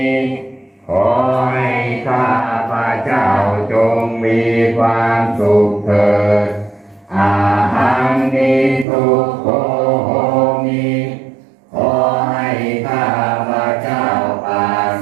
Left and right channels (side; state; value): left; drops out; at 8.8 s